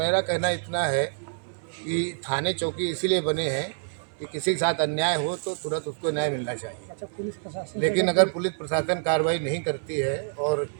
कहना इतना है कि थाने चौकी इसीलिए बने हैं कि किसी के साथ अन्याय हो तो तुरंत उसको न्याय मिलना चाहिए। अच्छा, पुलिस प्रशासन लेकिन अगर पुलिस प्रशासन कार्रवाई नहीं करती है और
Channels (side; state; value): left; silent; digital silence